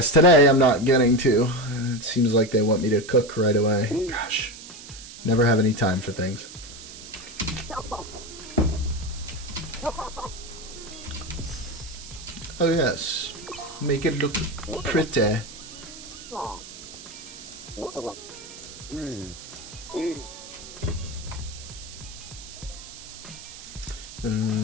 today I'm not getting to. It seems like they want me to cook right away. Gosh. Never have any time for things. Oh yes. Make it look pretty.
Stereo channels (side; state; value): right; noise; hiss, 14 dB below the sound